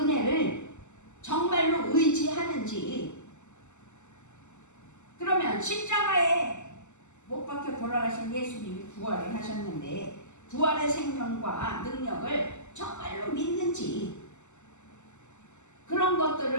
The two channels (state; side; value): late; right; 0.83 ms